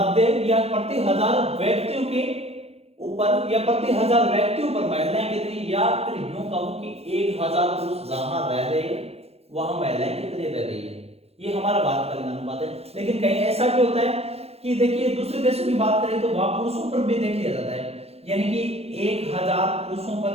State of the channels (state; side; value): late; left; 0.29 ms